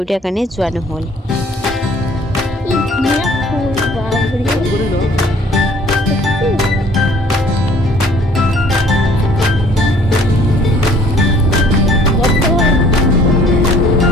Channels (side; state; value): both; normal; correlation 0.55